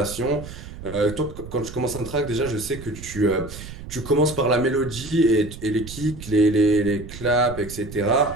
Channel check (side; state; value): right; noise; rumble, 13 dB below the sound